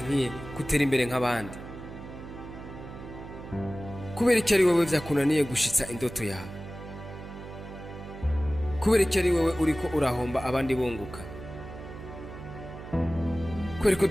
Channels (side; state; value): right; noise; hum, 12 dB below the sound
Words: gutera imbere nk'abandi? Kubera iki ari wewe vyakunaniye gushitsa indoto yawe? Kubera iki ari wewe uriko urahomba abandi bunguka? Kubera ko